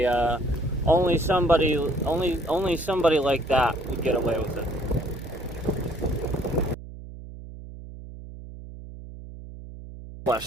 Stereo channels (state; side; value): noise; right; hum, 14 dB below the sound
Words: somebody like that would get away with it.